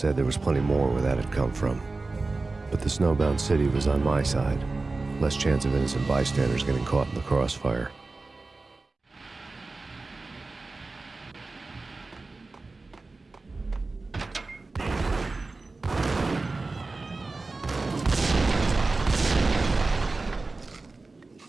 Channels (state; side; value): quieter; left; 3.6 dB